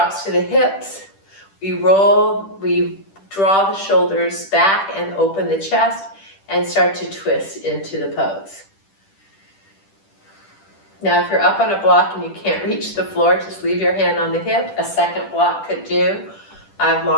to the hips. We roll, we draw the shoulders back and open the chest and start to twist into the pose. Now, if you're up on a block and you can't reach the floor, just leave your hand on the hip. A second block could do. I have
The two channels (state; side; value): late; right; 10 ms